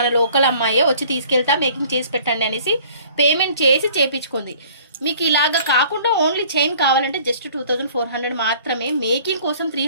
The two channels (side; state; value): both; inverted; correlation -0.53